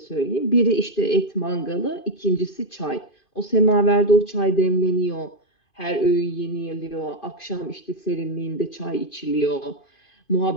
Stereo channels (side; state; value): right; late; 2.5 ms